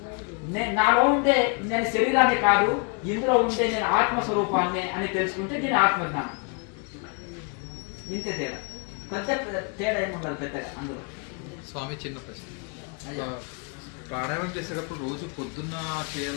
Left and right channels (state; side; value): quieter; right; 36.3 dB